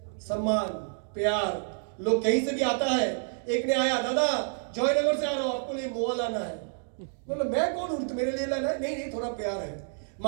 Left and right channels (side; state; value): left; silent; digital silence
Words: सम्मान, प्यार। लोग कहीं से भी आता है, एक ने आया, दादा जयनगर से आ रहा हूं, आपको लिए मोआ लाना है। बोलो मैं कौन हूं, मेरे लिए लाना है? नहीं थोड़ा प्यार है।